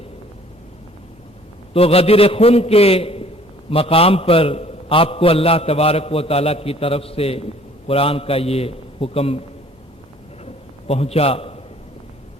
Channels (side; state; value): both; normal; correlation 0.55